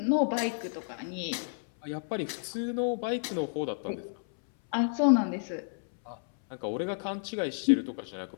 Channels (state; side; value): silent; right; 57 dB below the other